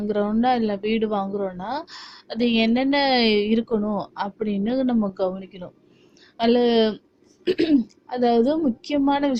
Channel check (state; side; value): identical; both; correlation 1.00